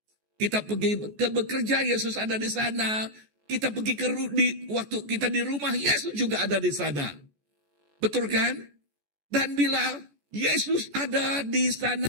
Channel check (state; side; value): late; left; 14 ms